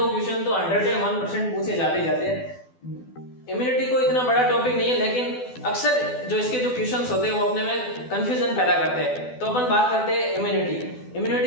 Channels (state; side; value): late; right; 12 ms